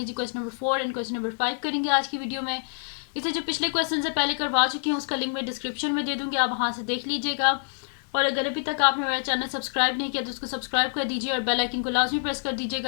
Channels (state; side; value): silent; right; digital silence